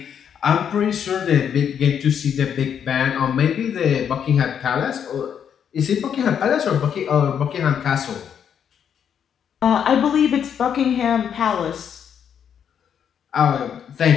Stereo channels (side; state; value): right; quieter; 8.3 dB